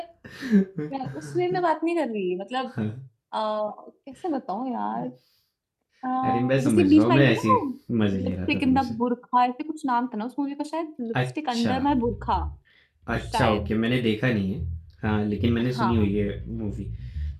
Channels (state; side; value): identical; both; correlation 1.00